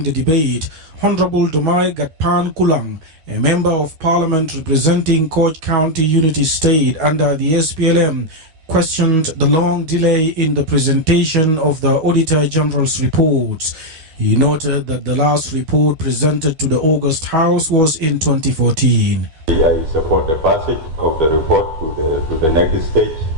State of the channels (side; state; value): left; late; 13 ms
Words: the debate, Honorable Dumai Gatpan Kulang, a member of parliament representing Koch County Unity State under the SPLM, questioned the long delay in the presentation of the Auditor General's reports. He noted that the last report presented to the August House was in 2014. I support the passage of the report to the next stage,